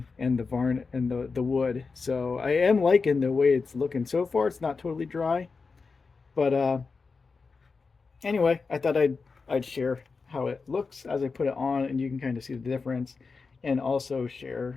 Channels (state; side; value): quieter; right; 4.6 dB